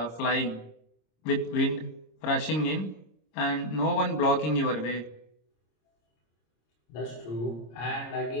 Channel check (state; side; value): late; right; 26 ms